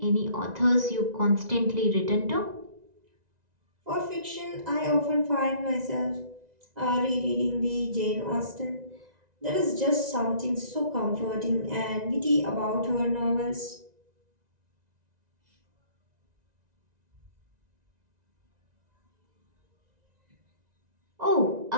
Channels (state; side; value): late; left; 1.9 ms